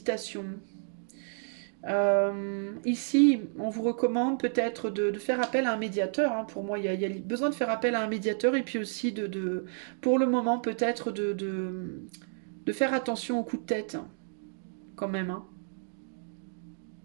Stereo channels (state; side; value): silent; left; digital silence